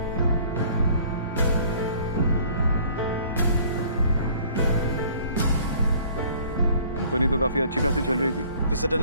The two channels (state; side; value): inverted; both; correlation -0.54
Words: कंपनी तो काफी अच्छी खासी चल रही थी, फिर